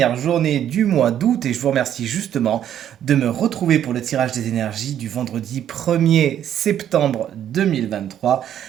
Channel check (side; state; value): left; quieter; 10.4 dB